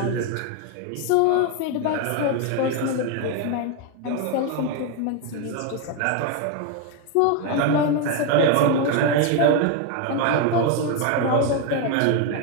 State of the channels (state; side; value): different; both; correlation 0.01